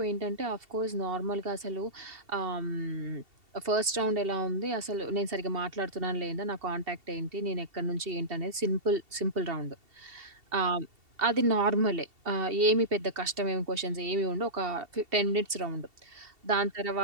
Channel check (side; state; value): left; late; 2.7 ms